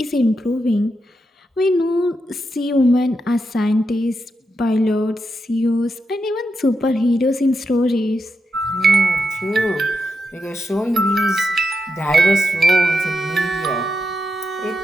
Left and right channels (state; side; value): normal; both; correlation 0.85